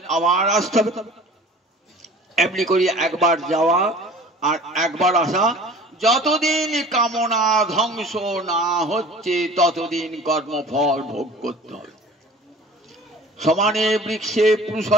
আবার আসতে হবে। এমনি করি একবার যাওয়া আর একবার আসা। যতদিন কামনা ধ্বংস না হচ্ছে ততদিন কর্মফল ভোগ করতে হবে। সমানে বৃক্ষে পুরুষ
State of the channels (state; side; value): normal; both; correlation 0.44